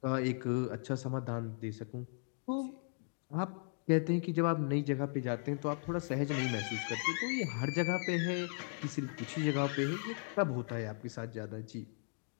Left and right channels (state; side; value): silent; right; 53 dB below the other